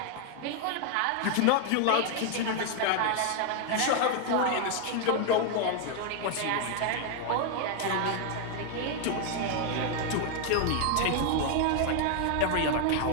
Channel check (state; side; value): different; both; correlation 0.00